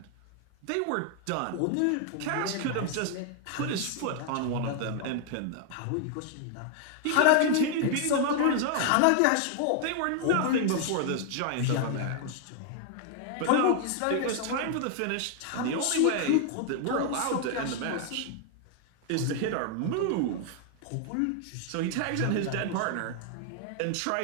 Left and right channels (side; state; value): both; different; correlation 0.00